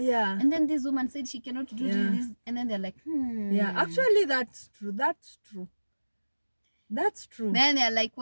And then this woman said she cannot do this. And then they're like, Yeah, actually that's true. Then they're like,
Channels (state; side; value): inverted; both; correlation -1.00